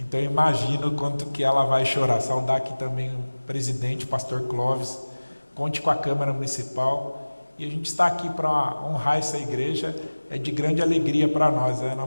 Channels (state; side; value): inverted; both; correlation -1.00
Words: imagino o quanto que ela vai chorar. Saudar aqui também o presidente, o pastor Clóvis, conte com a Câmara Municipal. E a gente está aqui para honrar essa igreja, é de grande alegria para nós, né, Ana